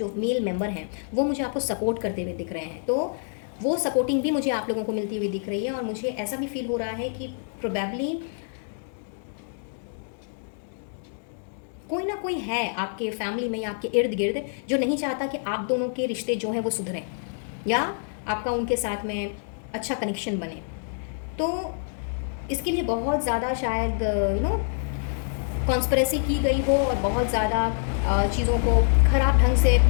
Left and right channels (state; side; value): silent; right; digital silence